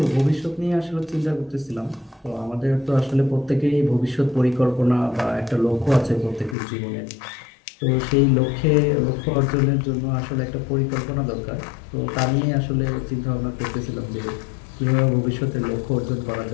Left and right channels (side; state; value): right; drops out; at 6.6 s